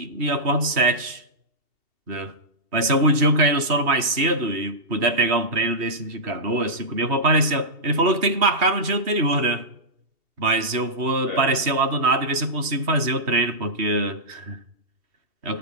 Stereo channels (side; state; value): left; late; 2.7 ms